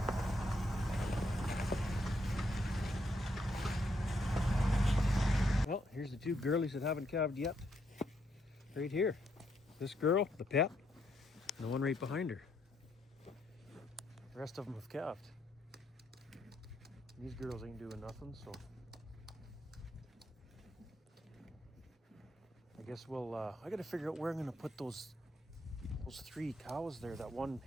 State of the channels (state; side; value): normal; both; correlation 0.75